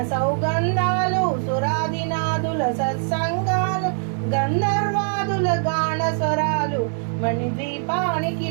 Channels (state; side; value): silent; left; 61 dB below the other